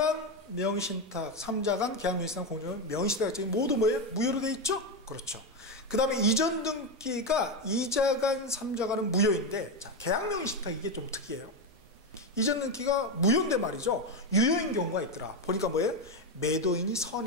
명의신탁, 삼자간 계약명의신탁, 공정은 명의신탁 약정이 모두 뭐예요? 무효로 돼 있죠? 그렇죠. 그 다음에 이전 등기가 이자간, 삼자간은 무효인데, 자, 계약명의신탁 이게 좀 특이해요. 이전 등기가 무효인데 말이죠. 유효인 경우가 있더라. 보니까 뭐예요? 매도인이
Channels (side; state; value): both; normal; correlation 0.11